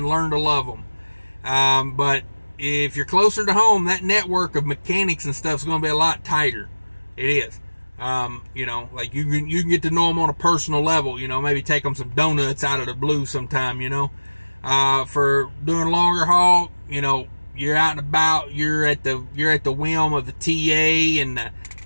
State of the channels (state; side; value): inverted; both; correlation -1.00